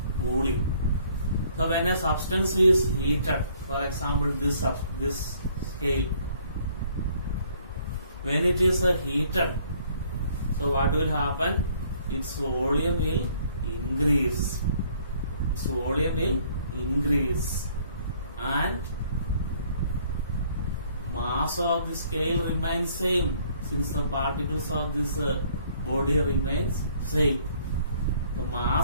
cooling. So when a substance is heated, for example this scale, when it is heated, so what will happen? Its volume will increase. Its volume will increase and mass of the scale remains same since the particles of this body remains same. The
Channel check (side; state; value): both; inverted; correlation -0.61